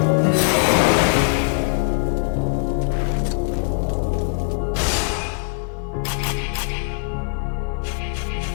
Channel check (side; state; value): right; silent; 65 dB below the other